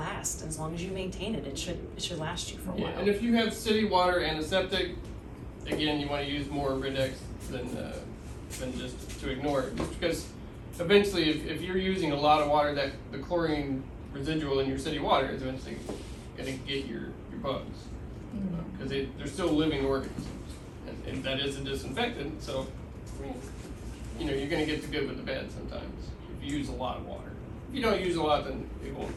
As long as you maintain it, it should last you for a Yeah, while. and if you have city water and a septic, again, you wanna use more Rid-X than just to ignore it, just because eventually, if you're using a lot of water, that the chlorine residual in your city water is eventually gonna get your bugs. Cause they're still living organisms, and that is a disinfectant, so, I mean, you're gonna get the good with the bad sometimes, if you use a lot of water. If you don't use a lot, then you won't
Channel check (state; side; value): identical; both; correlation 1.00